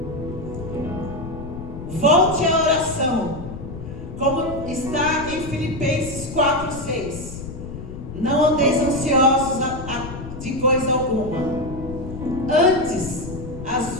Volte à oração, como está em Filipenses 4,6. Não andeis ansiosos de coisa alguma. Antes, as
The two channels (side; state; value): left; noise; rumble, 10 dB below the sound